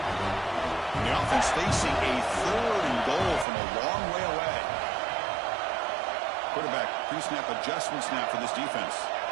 And the offense facing a third and goal from a long way away. Quarterback pre-snap adjustment snap for this defense.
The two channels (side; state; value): left; drops out; at 3.5 s